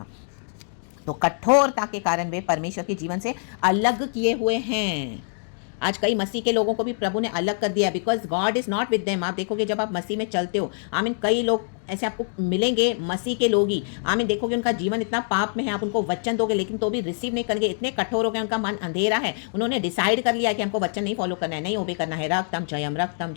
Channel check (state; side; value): silent; right; digital silence